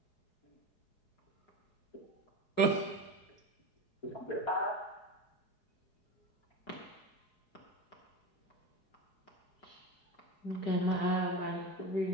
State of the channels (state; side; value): late; right; 4.8 ms